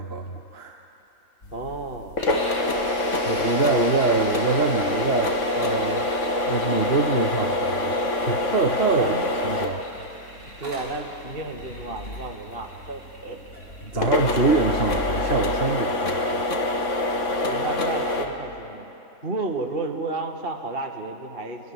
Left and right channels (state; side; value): late; right; 3.5 ms